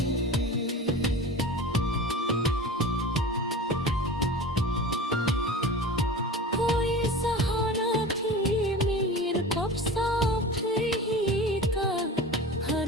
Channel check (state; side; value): normal; both; correlation 0.34